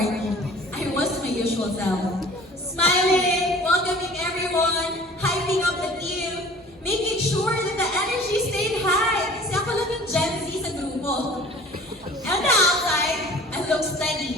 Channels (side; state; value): both; normal; correlation 0.46